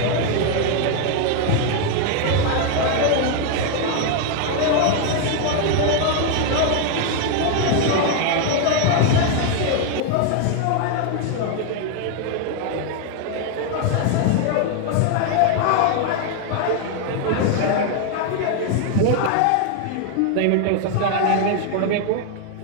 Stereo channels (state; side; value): different; both; correlation 0.01